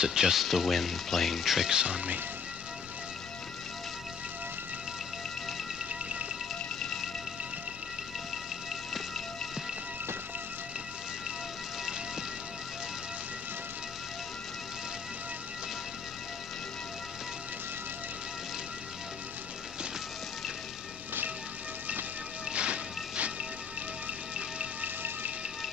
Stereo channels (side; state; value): right; quieter; 6.0 dB